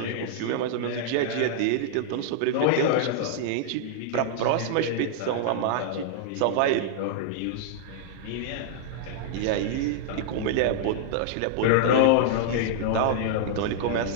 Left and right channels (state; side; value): different; both; correlation -0.01